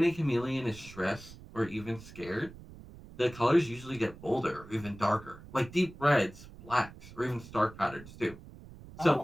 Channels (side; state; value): right; noise; rumble, 17 dB below the sound